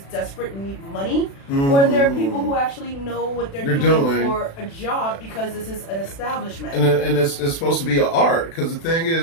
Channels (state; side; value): late; right; 36 ms